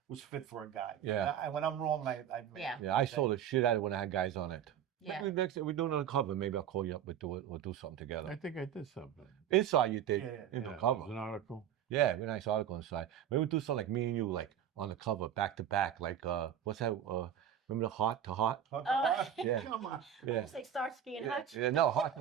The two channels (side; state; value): left; quieter; 9.6 dB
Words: fit for a guy. Yeah. And when I'm wrong, I Yeah. Yeah, I sold the shit out of it when I had guys on it. Yeah. Maybe next we're doing it on cover. Maybe I'll call you up. We'll do something together. I think I did something. Inside you did. Yeah, In Yeah, the it cover. was an article. Yeah, very nice article inside. Maybe we'll do something like me and you, like on the cover, back to back, like what's that? Remember the Heart to Heart? Yeah. Come on. Yeah. It's like Starsky and Hutch. Yeah, no, Heart to